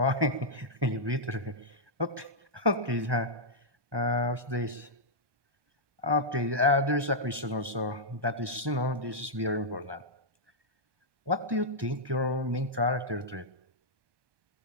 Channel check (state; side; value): late; left; 1.2 ms